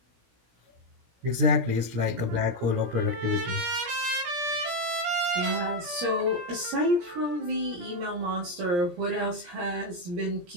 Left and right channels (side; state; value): left; late; 17 ms